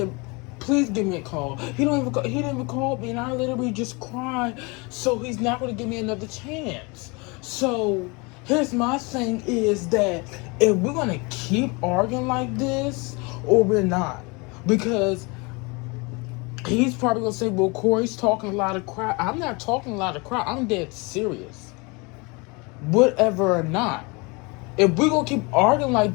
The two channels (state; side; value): quieter; right; 28.3 dB